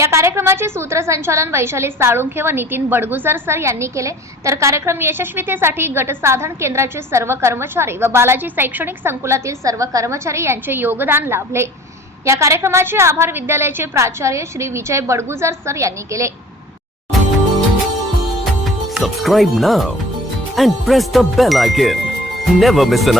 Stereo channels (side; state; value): both; normal; correlation 0.46